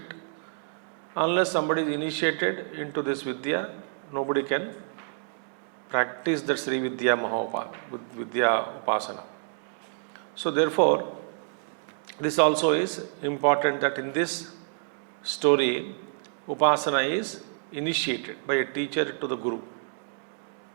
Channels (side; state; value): left; silent; digital silence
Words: Unless somebody is initiated into this Vidya, nobody can practice the Sri Vidya Vidya Upasana. So therefore, this also is important that in this story, Upasana is initiated by a teacher to the Guru.